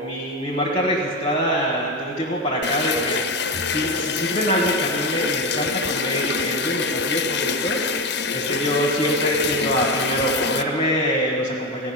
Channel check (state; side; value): normal; both; correlation 0.15